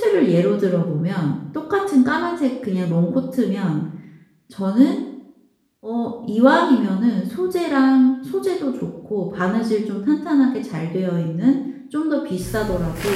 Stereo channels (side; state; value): both; identical; correlation 1.00